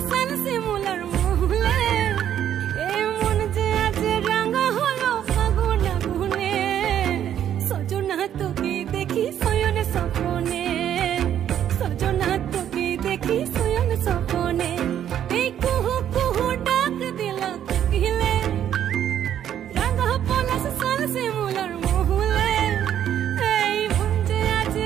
সাল শিমুলার মহুলে এই মন যে আজ রঙ হলো ফাগুন আগুনে সজনা তোকে দেখি শয়নে স্বপনে সজনা তোকে দেখি শয়নে স্বপনে এই কুহু কুহু ডাক দিলা কোকিলে রঙ পলাশ সাল শিমুলার মহুলে এই মন যে আজ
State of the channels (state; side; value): quieter; left; 10.2 dB